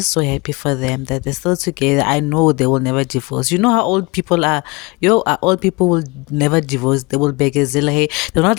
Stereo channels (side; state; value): right; quieter; 26.2 dB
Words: so happy for them that they're still together. I know they will never divorce. You know how old people are. Old people will never divorce. They will beg Zilla. Hey, they're